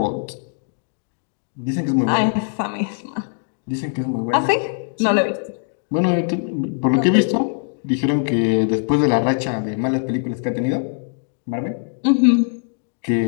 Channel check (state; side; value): silent; right; digital silence